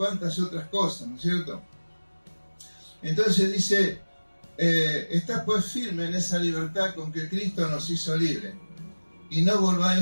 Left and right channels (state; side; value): inverted; both; correlation -1.00